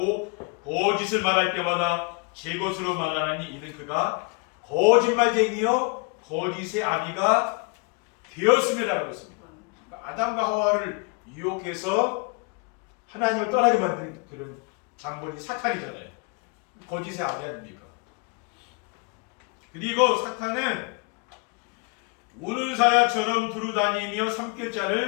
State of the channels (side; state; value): right; quieter; 30.7 dB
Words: 거짓을 말할 때마다 제 것으로 말하나니 이는 그가 거짓말쟁이요 거짓의 아비가 되었음이라고 했습니다. 그러니까 아담과 하와를 유혹해서 하나님을 떠나게 만든 그런 장본이 사탄이잖아요. 거짓의 아비 아닙니까? 그리고 사탄은 우는 사야처럼 두루다니며